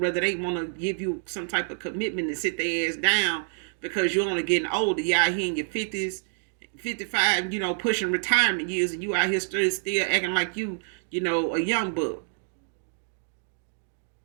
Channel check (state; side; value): silent; left; 60 dB below the other